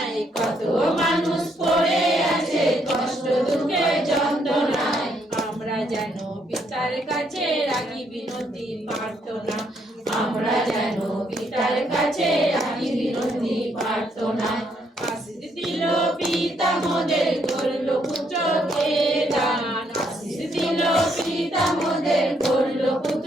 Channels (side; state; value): both; normal; correlation 0.73